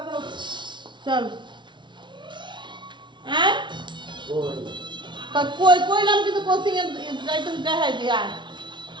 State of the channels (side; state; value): left; late; 0.23 ms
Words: যাও চল। হ্যাঁ কই কইলাম কিন্তু কোচিং এ যাইতে দেখাই দি, আয়